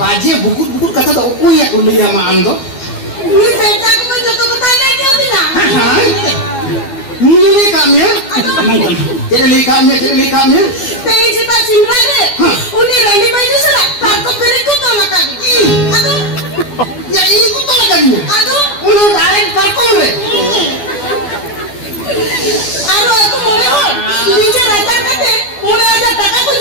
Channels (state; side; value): late; right; 12 ms